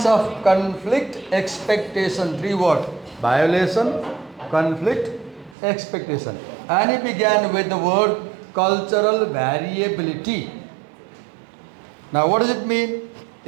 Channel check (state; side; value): drops out; left; at 5.6 s